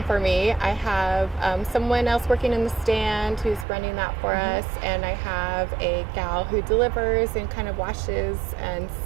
for me. I have someone else working in the stand who's running that for us, and I have a gal who delivers and kind of washes and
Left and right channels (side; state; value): left; drops out; at 3.7 s